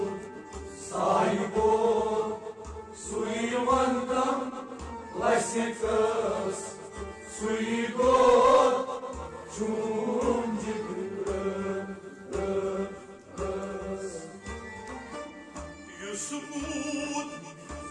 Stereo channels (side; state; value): both; identical; correlation 1.00